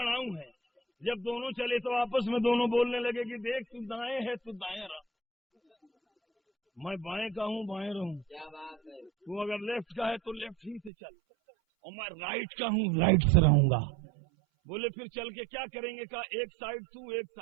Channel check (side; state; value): left; drops out; at 10.9 s